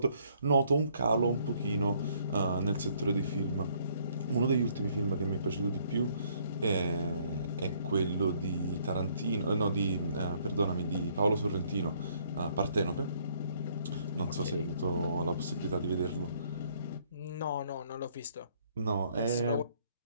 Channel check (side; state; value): both; inverted; correlation -0.65